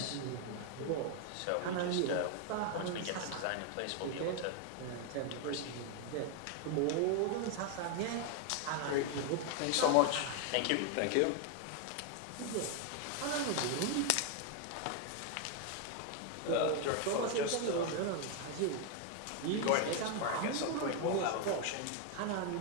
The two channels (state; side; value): different; both; correlation 0.01